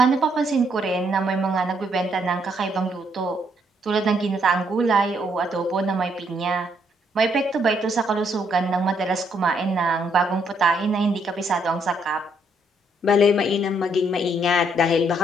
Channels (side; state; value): both; normal; correlation 0.72